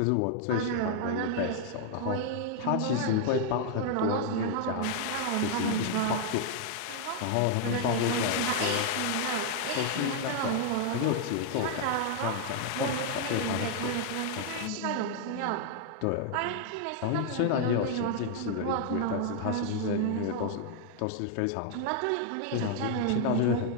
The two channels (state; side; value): different; both; correlation 0.00